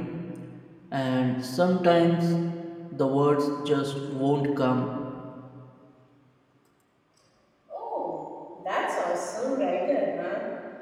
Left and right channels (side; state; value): both; identical; correlation 1.00